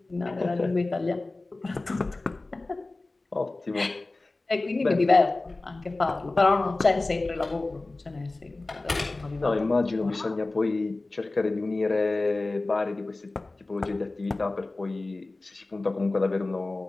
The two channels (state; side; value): quieter; right; 3.1 dB